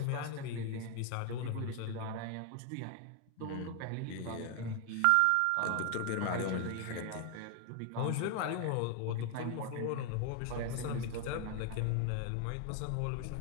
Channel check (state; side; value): different; both; correlation 0.00